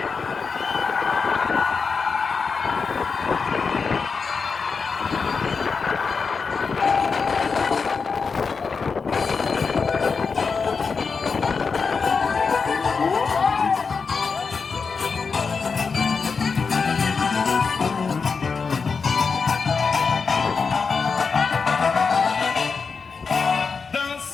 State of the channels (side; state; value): right; quieter; 5.1 dB